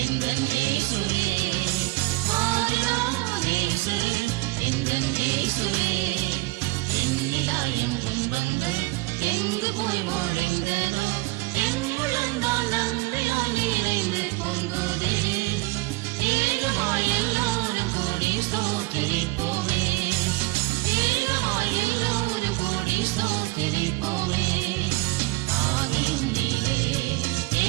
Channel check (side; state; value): left; quieter; 23.8 dB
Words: எங்கள் இயேசுவே, மாறிலா நேசரே எங்கள் இயேசுவே. என்னிலாயம் துன்பங்கள் எங்கு போய் மொழிந்ததோ, என் முழங்கால் அன்பினால் நிறைந்து பொங்குதே. ஏகமாய் எல்லோரும் கூடி ஸ்தோத்திரிப்போமே, ஏகமாய் எல்லோரும் கூடி ஸ்தோத்திரிப்போமே. ஆவியின் நீரே